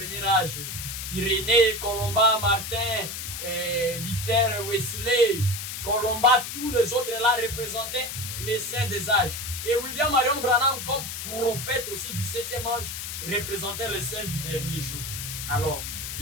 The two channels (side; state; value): left; noise; hiss, 6 dB below the sound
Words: âge. Irénée, Colomba, Martin, Luther, Wesley, Colomba, tous les autres là représentaient les saints des âges. Et William Marion Branham, comme prophète aussi du 7e âge, représentait les saints du dernier jour. Alors,